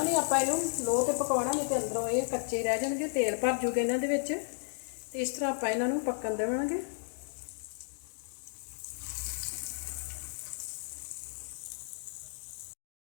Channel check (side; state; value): right; silent; digital silence